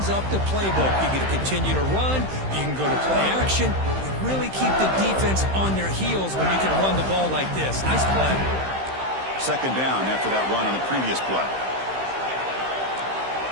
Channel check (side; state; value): left; late; 15 ms